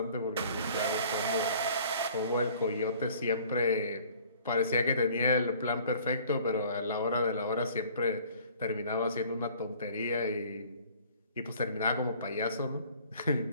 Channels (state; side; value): inverted; both; correlation -0.52